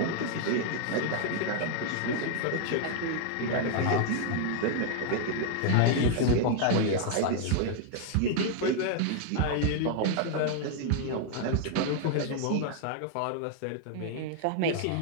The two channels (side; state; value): both; different; correlation 0.00